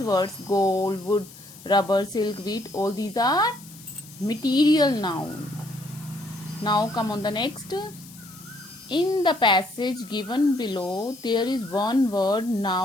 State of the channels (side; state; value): left; noise; hiss, 19 dB below the sound